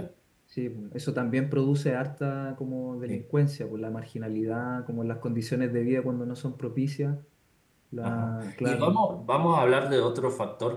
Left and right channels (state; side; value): identical; both; correlation 1.00